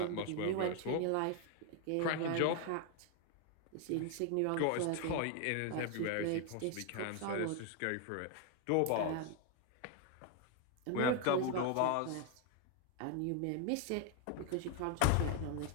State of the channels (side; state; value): both; different; correlation 0.01